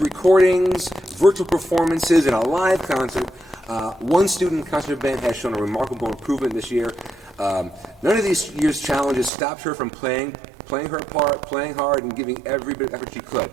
virtual performances, and a live concert, One student in concert band has shown a remarkable improvement this year. None of these year's challenges stopped her from playing her part, playing hard, and giving every bit of effort she could.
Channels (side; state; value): left; drops out; at 9.3 s